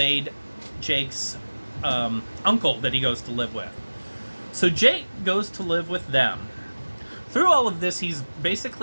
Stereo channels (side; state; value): both; inverted; correlation -1.00